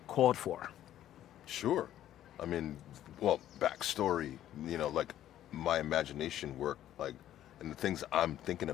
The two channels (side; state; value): right; quieter; 12.1 dB